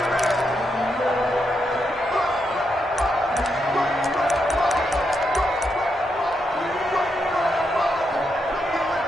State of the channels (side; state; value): both; normal; correlation 0.82